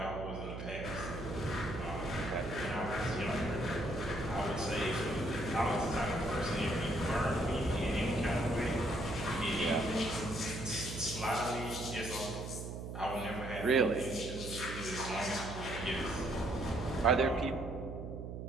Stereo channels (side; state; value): right; noise; hum, 7 dB below the sound